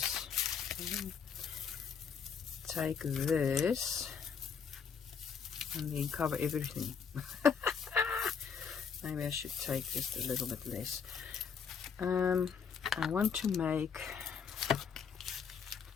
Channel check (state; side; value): quieter; right; 6.5 dB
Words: take this and then cover everything. Maybe I should take just a little bit less. I want to make